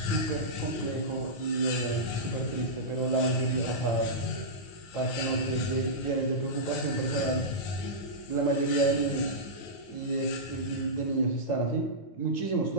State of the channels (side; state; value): right; late; 9.4 ms